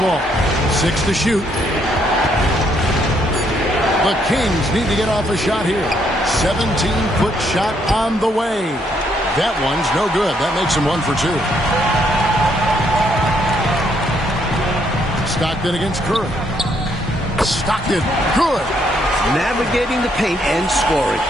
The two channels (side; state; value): both; normal; correlation 0.71